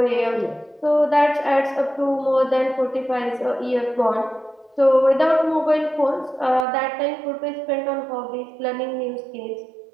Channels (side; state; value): left; drops out; at 6.7 s